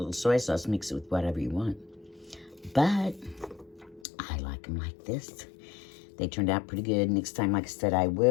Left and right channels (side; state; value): right; drops out; at 4.0 s